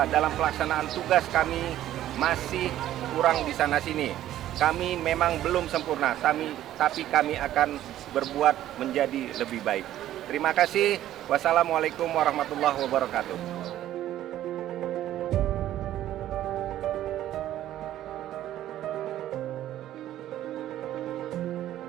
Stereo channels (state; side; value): quieter; left; 12.9 dB